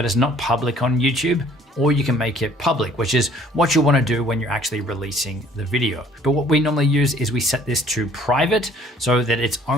it's not public on YouTube. Or you can make it public, which is what you want to do when you're actually releasing the video. But what we normally use is we set this to private so that it's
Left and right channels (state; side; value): normal; both; correlation 0.56